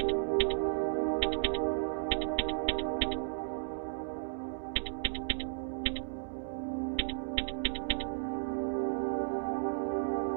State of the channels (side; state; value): left; silent; 55 dB below the other